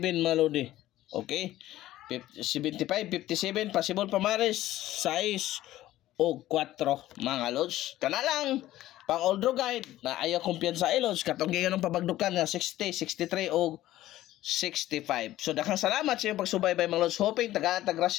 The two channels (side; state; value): right; quieter; 14.8 dB